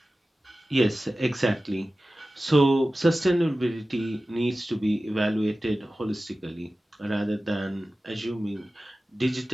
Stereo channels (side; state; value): both; normal; correlation 0.95